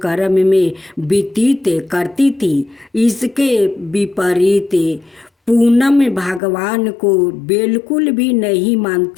कर्म में व्यतीत करती थी। इसके विपरीत पूनम भगवान को बिल्कुल भी नहीं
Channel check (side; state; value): right; drops out; at 6.4 s